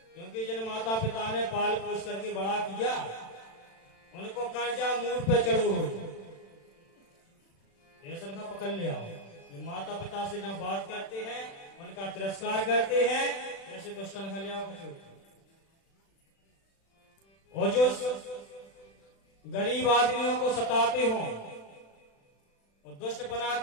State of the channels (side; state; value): right; late; 36 ms